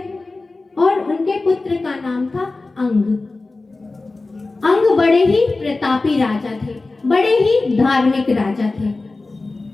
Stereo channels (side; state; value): right; quieter; 3.4 dB